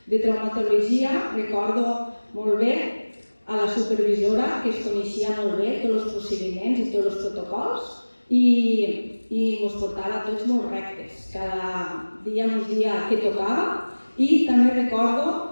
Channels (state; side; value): inverted; both; correlation -1.00